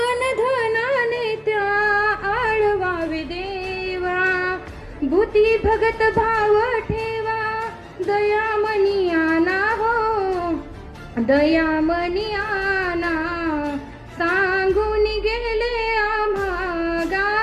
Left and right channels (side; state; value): both; identical; correlation 1.00